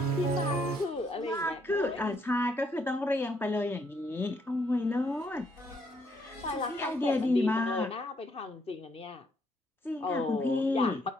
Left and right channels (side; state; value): both; normal; correlation 0.71